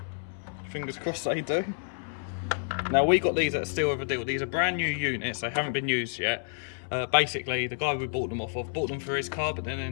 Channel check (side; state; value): right; silent; 58 dB below the other